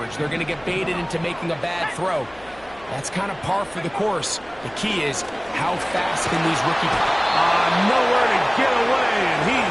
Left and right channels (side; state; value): left; noise; hum, 25 dB below the sound